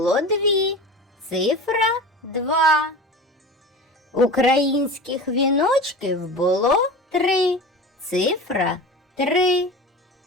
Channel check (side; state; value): both; normal; correlation 0.32